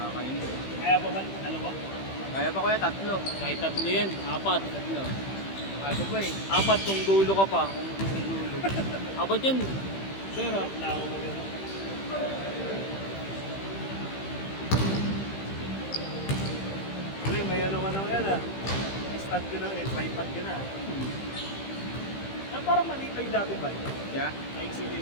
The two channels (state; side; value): late; right; 15 ms